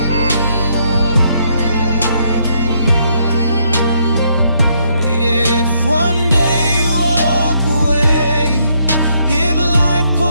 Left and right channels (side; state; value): both; inverted; correlation -0.73